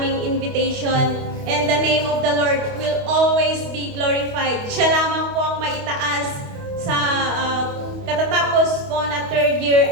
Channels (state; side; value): late; left; 28 ms